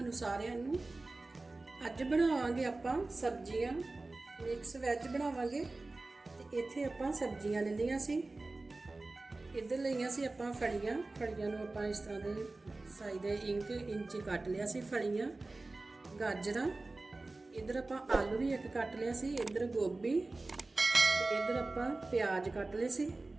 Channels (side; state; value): left; quieter; 3.2 dB